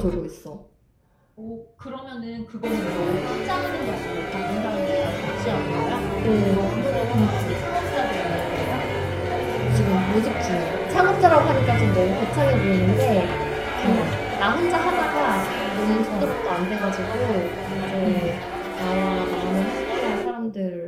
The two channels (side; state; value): both; identical; correlation 1.00